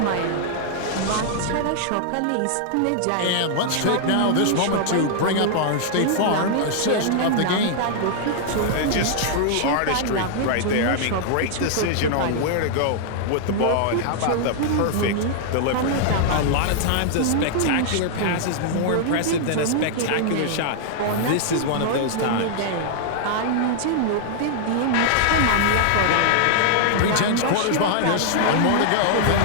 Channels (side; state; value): both; different; correlation -0.01